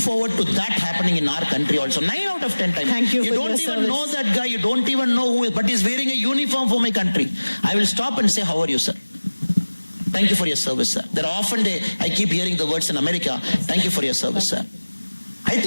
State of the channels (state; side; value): inverted; both; correlation -1.00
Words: to that happening in our country also. 9 out of 10 times. Thank you for don't your even service. know that guy. You don't even know who is, but he's wearing a uniform for my country. I will stop and say, how are you, sir? Thank you for your service, sir. There are often I keep hearing the words in America, thank you for your service, sir. I